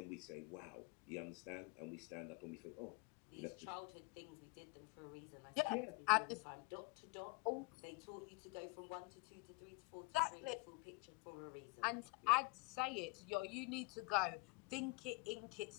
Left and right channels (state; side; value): quieter; right; 26.2 dB